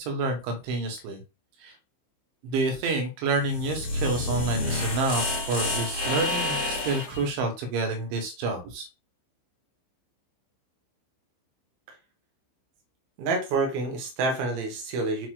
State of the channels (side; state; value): left; late; 15 ms